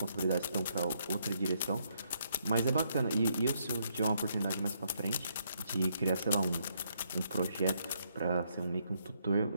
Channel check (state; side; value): inverted; both; correlation -0.74